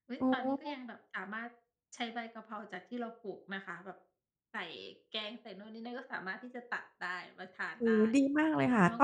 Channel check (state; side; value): identical; both; correlation 1.00